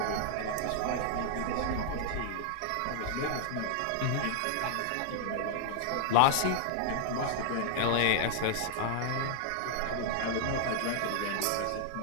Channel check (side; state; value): both; different; correlation -0.01